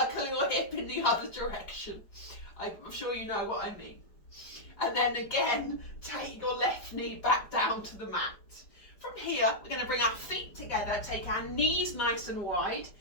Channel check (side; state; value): right; late; 5.0 ms